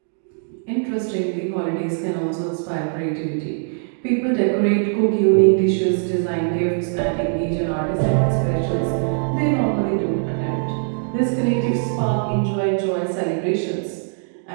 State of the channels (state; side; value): silent; left; digital silence